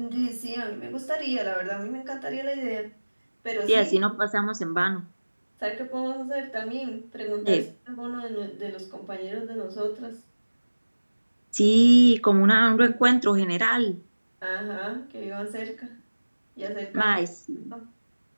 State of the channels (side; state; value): both; inverted; correlation -1.00